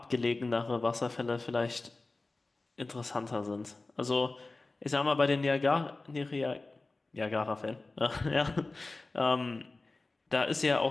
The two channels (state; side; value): quieter; right; 3.3 dB